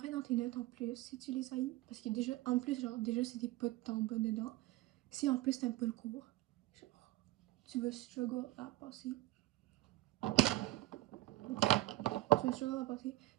dans tes notes en plus si tu les haïs. Parce que déjà, en plus, genre, déjà c'est des pas de temps bas dedans. Si en plus t'aimes pas le cours, genre, tu vas struggle à passer. Tu vas struggle à passer.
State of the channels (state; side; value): quieter; left; 17.3 dB